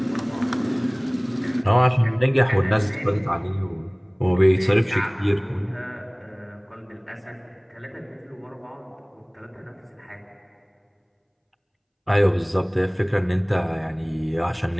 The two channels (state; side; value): identical; both; correlation 1.00